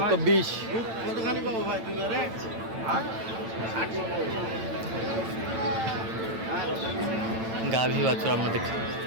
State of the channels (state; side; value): late; left; 8.9 ms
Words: কতখানি পাবো ভাই? দুইবারে গাভী বাছুর আমরা দেখছি।